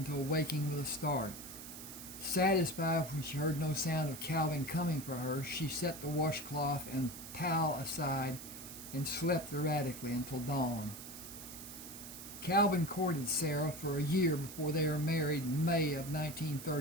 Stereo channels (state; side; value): noise; right; hiss, 12 dB below the sound